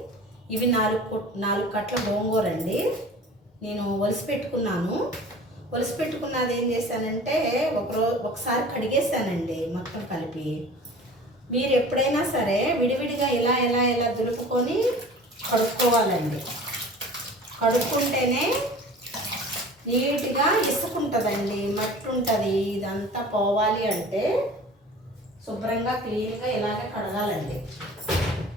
ఇవి 4 కట్టల గోంగూర అండి. నేను ఒలిసి పెట్టుకున్నది ఏం చేశానంటే ఒకసారి కడిగేసానండి మొత్తం కలిపి. మీరు ఎప్పుడైనా సరే విడివిడిగా ఇలా దులుపుకొని కడుక్కోవాలండి. కడుక్కుంటేనే నీట్గా ఇసుకుంటుందండి, మట్టి ఉంటుంది. ఇదంతా పోవాలి అంటే శుభ్రంగా క్లీన్గా ఇలాగే కడగాలండి.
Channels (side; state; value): both; normal; correlation 0.42